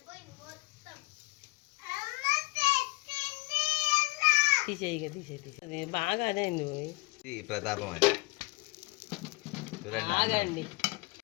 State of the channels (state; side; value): quieter; right; 24.8 dB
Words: తీసేయి తీసేది బాగా. అదే ప్రతాపం అది. చూడండి, ఆగండి.